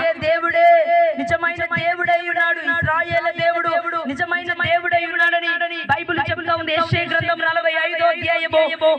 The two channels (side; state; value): both; identical; correlation 1.00